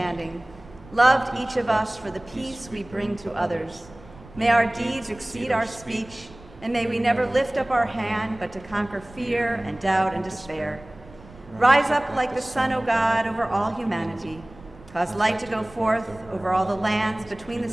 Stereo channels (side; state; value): right; noise; rumble, 21 dB below the sound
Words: loved each of us for the peace we bring to others. May our deeds exceed our speech, and may we never lift up our hand but to conquer fear and doubt and despair. Rise up like the sun, O God, over all humanity. Cause light to go forth over all the lands between the